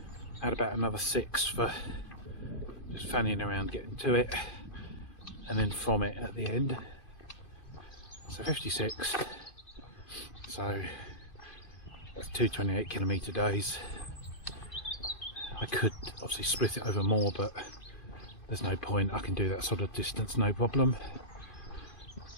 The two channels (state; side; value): late; right; 2.4 ms